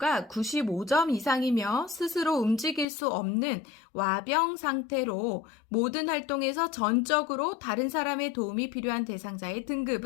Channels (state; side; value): drops out; right; at 2.9 s